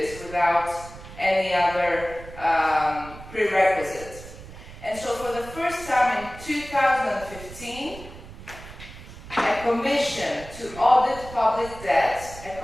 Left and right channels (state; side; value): noise; right; rumble, 15 dB below the sound